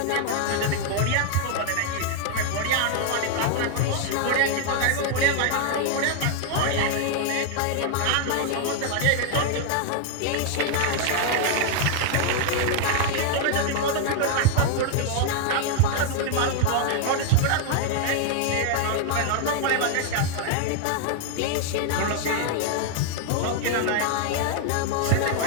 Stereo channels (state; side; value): different; both; correlation 0.00